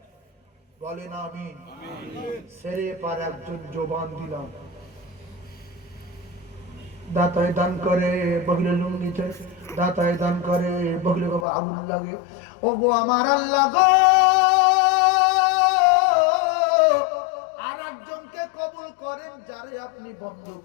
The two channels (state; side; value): drops out; right; at 11.5 s